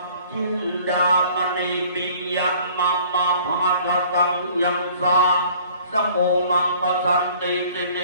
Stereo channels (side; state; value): both; inverted; correlation -0.53